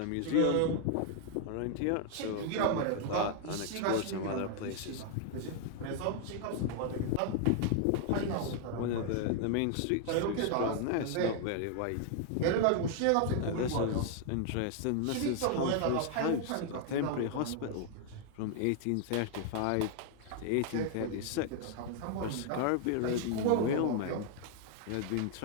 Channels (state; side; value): different; both; correlation 0.00